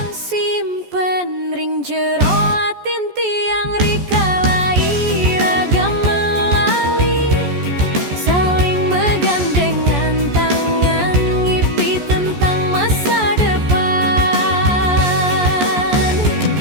simpen ring jero atin tiang rika lai ragam melali saling megandengan tangan ngipi tentang masa depan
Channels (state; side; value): late; left; 14 ms